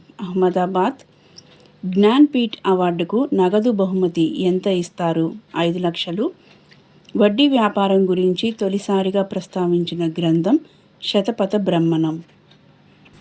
అహ్మదాబాద్. జ్ఞాన్పీఠ్ అవార్డుకు నగదు బహుమతి ఎంత ఇస్తారు? 5 లక్షలు. వడ్డీ వ్యాపారం గురించి తొలిసారిగా ప్రస్తావించిన గ్రంథం శతపథ బ్రహ్మణం.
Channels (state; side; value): identical; both; correlation 1.00